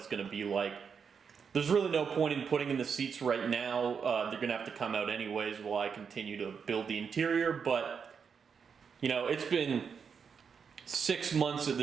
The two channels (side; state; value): left; quieter; 6.4 dB